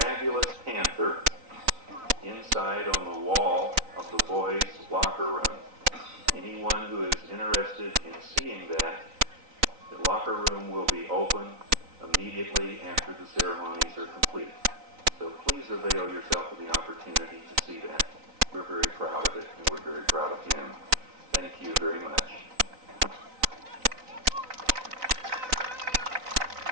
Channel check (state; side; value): late; left; 3.9 ms